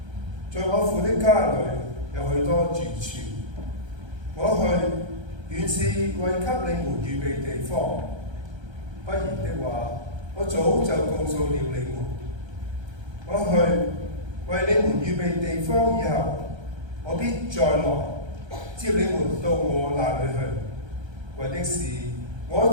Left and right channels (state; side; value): late; left; 1.3 ms